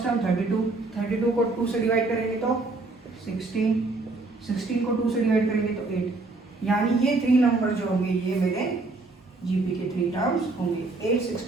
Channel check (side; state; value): left; quieter; 3.4 dB